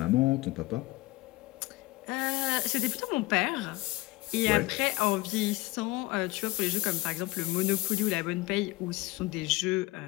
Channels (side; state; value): right; quieter; 20.1 dB